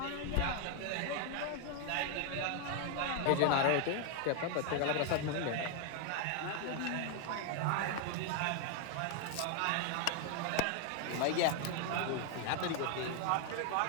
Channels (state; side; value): different; both; correlation 0.00